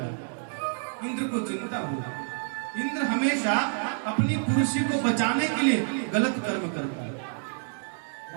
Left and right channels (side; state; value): left; silent; digital silence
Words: इंद्र को चिंता हुई। इंद्र हमेशा अपनी कुर्सी को बचाने के लिए गलत कर्म करता है।